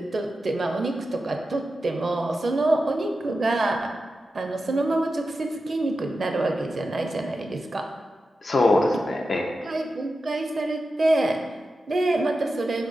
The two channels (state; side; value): normal; both; correlation 0.91